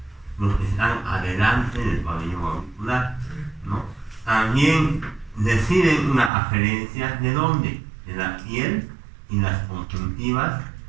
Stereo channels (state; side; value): drops out; left; at 6.3 s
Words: los que están adelante del pabellón auricular, ¿no? También reciben una aferencia de dónde, de la piel y las conjuntivas